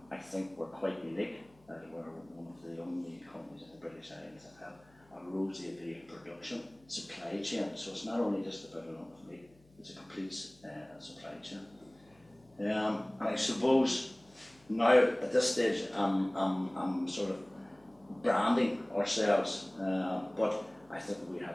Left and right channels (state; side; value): noise; left; hum, 29 dB below the sound